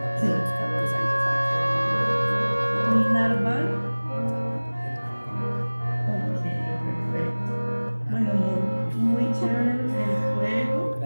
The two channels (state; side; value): inverted; both; correlation -1.00